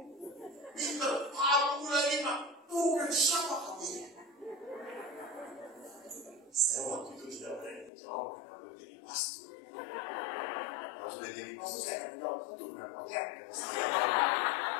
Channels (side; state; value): right; drops out; at 7.9 s